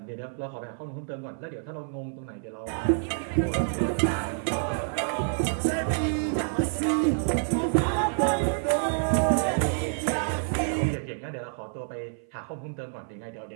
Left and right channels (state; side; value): silent; left; 55 dB below the other